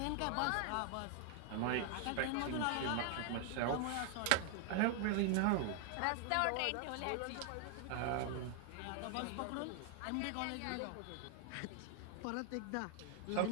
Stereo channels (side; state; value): both; different; correlation 0.00